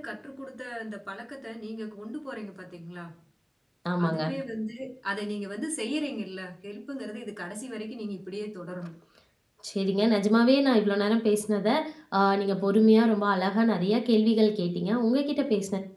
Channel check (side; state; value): both; identical; correlation 1.00